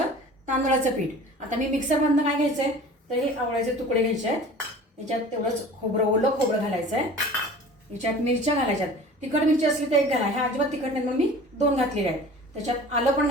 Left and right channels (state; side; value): normal; both; correlation 0.42